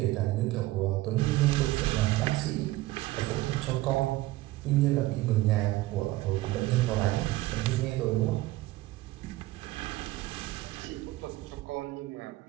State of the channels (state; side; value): quieter; left; 17.8 dB